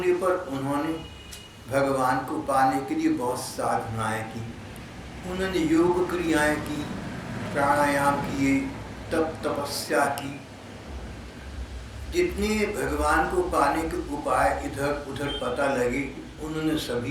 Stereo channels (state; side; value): identical; both; correlation 1.00